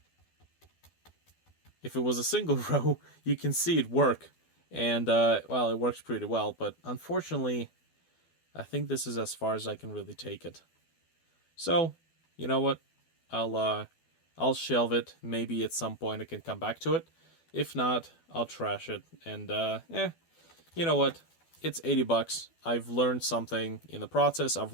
if it was a single row, you can see it work, and well, it works pretty well. But unfortunately, I think this is as far as I can really take it. So, you know what? I'll shelve it. Maybe at some point I can come back to it. If not, I'll trash it. And you know what? It's $80. I've learned something in the process. I've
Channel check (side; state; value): right; late; 12 ms